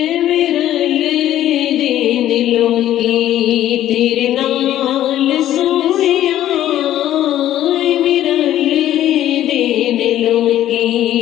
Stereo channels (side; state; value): right; quieter; 12.6 dB